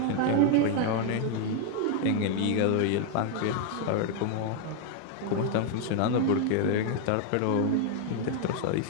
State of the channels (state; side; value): different; both; correlation 0.01